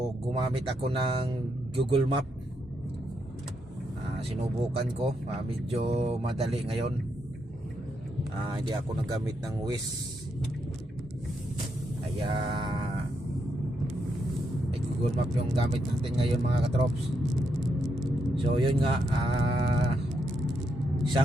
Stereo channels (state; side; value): normal; both; correlation 0.80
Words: gumamit ako ng Google Map. Sinubukan ko. Medyo madali ngayon. Hindi ako nagamit ng Waze. Kaya Google Map yung gamit natin ngayon mga katrops. So yun nga, 1